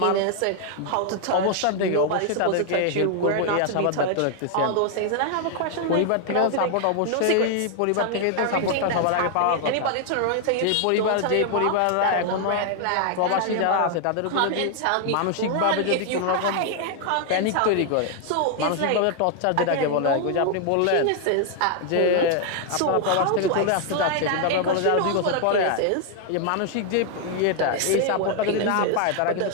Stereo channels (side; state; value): both; different; correlation 0.00